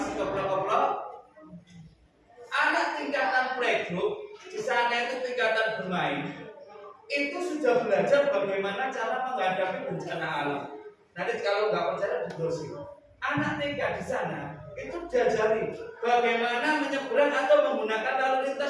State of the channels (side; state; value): both; identical; correlation 1.00